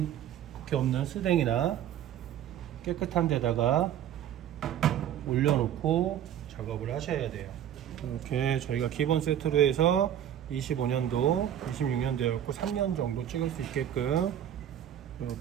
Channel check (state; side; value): quieter; left; 10.5 dB